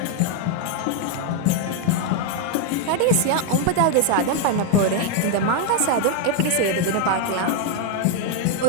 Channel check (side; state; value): both; different; correlation 0.01